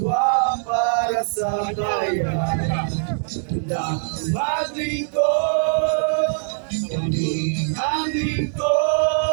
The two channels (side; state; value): left; silent; digital silence